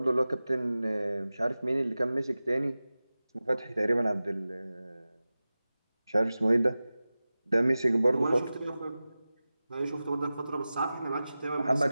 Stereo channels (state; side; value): inverted; both; correlation -0.96